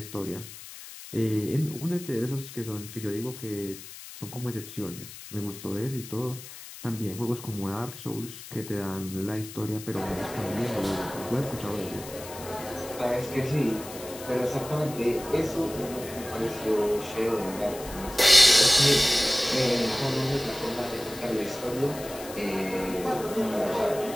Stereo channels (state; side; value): noise; left; hiss, 14 dB below the sound